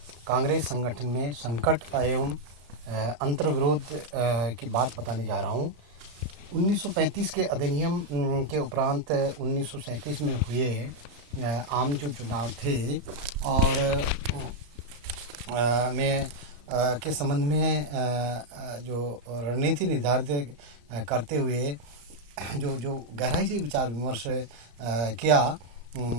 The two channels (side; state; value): left; late; 34 ms